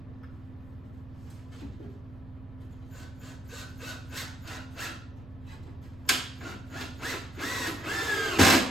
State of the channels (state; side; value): noise; right; rumble, 18 dB below the sound